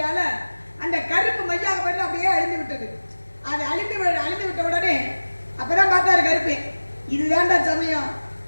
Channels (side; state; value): both; inverted; correlation -1.00